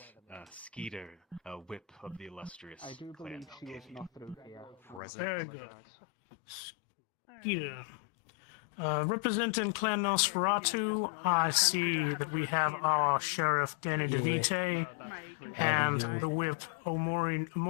Skeeter, whip of the illustrious I do clan believe she was Malkavian. not through here. Present. Very good. Skeeter. Representing Clan Nosferatu, I see that we have our Sheriff Danny DeVite and the whip Omori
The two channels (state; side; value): drops out; right; at 5.0 s